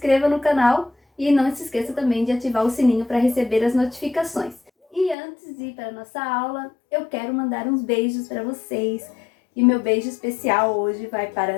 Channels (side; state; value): right; drops out; at 5.2 s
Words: no canal e não se esqueça também de ativar o sininho para receber as notificações. E antes de ir para a nossa aula, eu quero mandar uns beijos para vocês. E meu beijo especial hoje vai